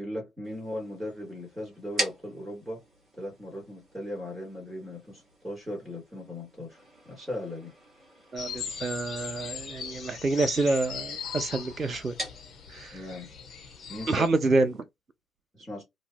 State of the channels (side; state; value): both; normal; correlation 0.82